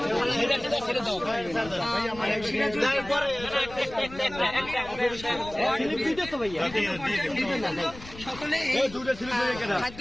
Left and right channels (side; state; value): left; noise; rumble, 16 dB below the sound